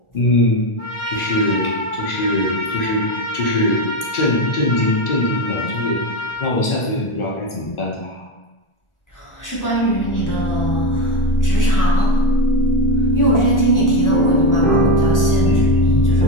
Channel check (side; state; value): right; late; 1.4 ms